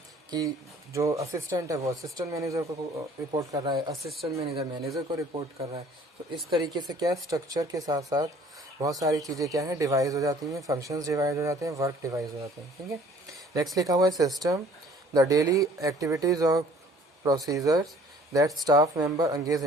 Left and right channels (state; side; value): normal; both; correlation 0.53